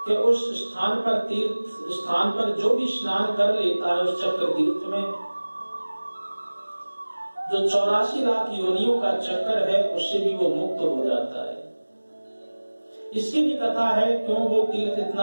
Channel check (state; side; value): inverted; both; correlation -1.00